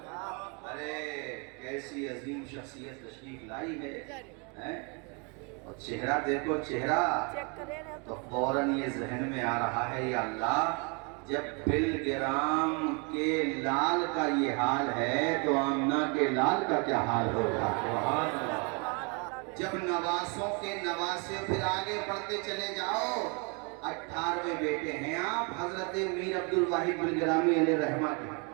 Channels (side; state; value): left; quieter; 33.5 dB